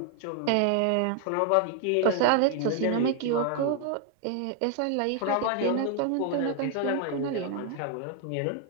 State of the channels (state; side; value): different; both; correlation 0.00